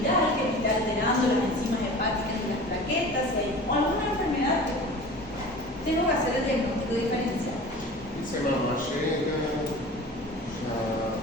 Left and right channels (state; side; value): normal; both; correlation 0.39